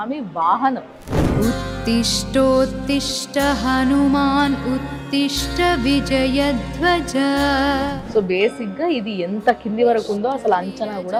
వాహనం. ఉత్తిష్టోత్తిష్ట హనుమాన్ ఉత్తిష్ట విజయధ్వజ. సో బేసిక్ గా ఇది ఎంత కింది వరకు ఉందో అసలు అంచనా కూడా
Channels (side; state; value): both; identical; correlation 1.00